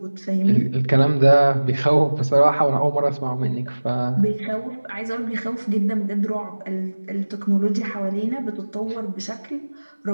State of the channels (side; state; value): both; inverted; correlation -1.00